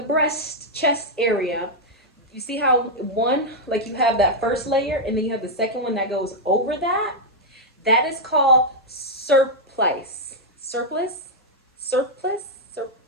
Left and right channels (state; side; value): normal; both; correlation -0.02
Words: chest area, you see how you have that first layer and then you have the second one that goes over that? That is called surplice. Surplice?